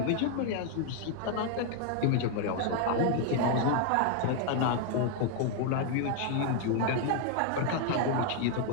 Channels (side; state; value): both; different; correlation 0.00